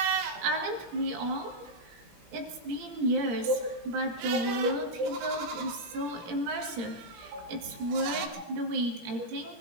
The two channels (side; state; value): left; late; 17 ms